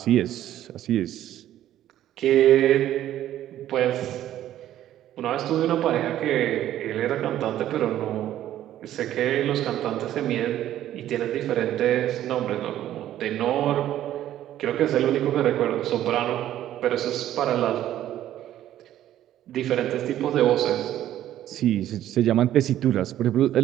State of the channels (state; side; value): quieter; left; 12.4 dB